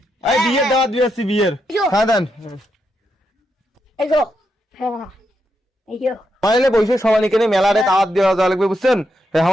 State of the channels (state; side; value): normal; both; correlation 0.82